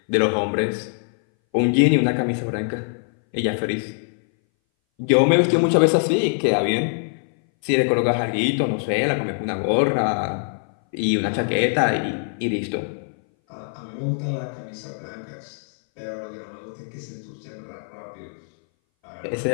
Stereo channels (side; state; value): right; silent; 60 dB below the other